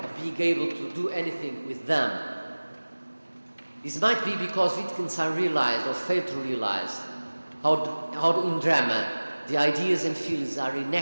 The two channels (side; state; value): both; inverted; correlation -1.00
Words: being able to do anything with them. This might be because Wittgenstein realized or failed to realize how in drama the ideas and feelings are